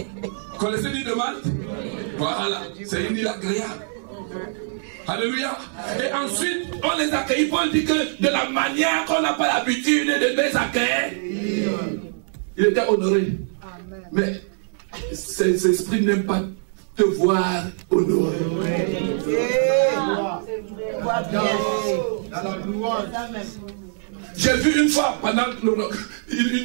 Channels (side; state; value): left; silent; 60 dB below the other